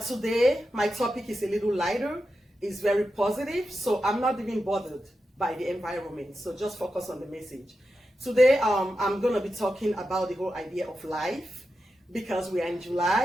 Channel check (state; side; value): normal; both; correlation 0.90